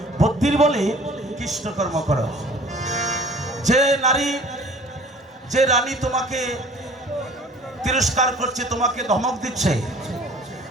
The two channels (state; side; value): normal; both; correlation 0.49